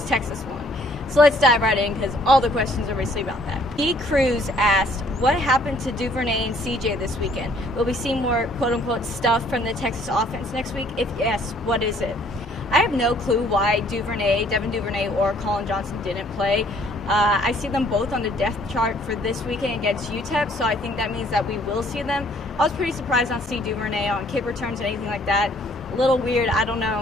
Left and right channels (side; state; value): both; normal; correlation 0.61